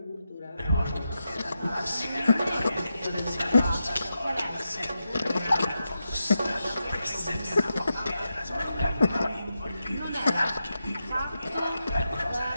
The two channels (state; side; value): inverted; both; correlation -0.88